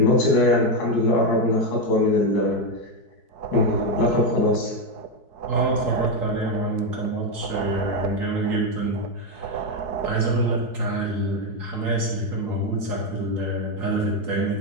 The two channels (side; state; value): right; late; 4.7 ms